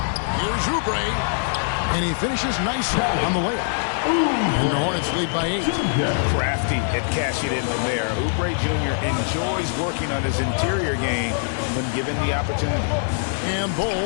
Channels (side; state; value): right; silent; 64 dB below the other